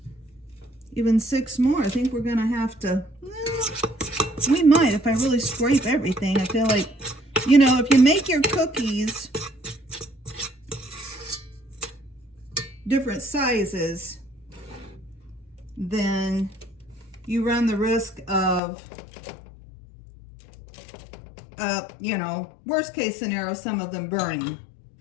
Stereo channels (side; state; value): right; drops out; at 18.6 s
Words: even 6 more. I think we're going to have to, we might if I really scrape everything. I feel like, you know, if you make your cookies different sizes, then you run the risk of, you know, worst case scenario, some of them burning.